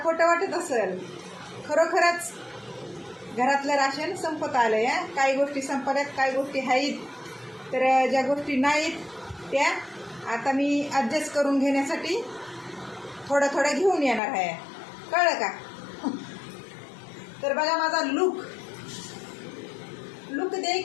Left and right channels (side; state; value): right; drops out; at 14.2 s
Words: खोटं वाटत असेल, खरोखरच घरातलं राशन संपत आलंय. काही गोष्टी संपल्यात, काही गोष्टी आहेत, तर ज्या गोष्टी नाहीत त्या आता मी ॲडजस्ट करून घेण्यासाठी थोडं थोडं घेऊन येणार आहे. कळलं का? तर बघा माझा लुक